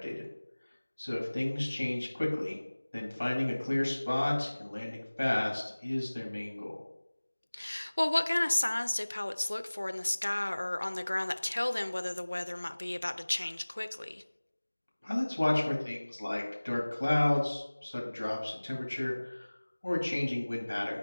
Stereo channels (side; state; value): both; inverted; correlation -1.00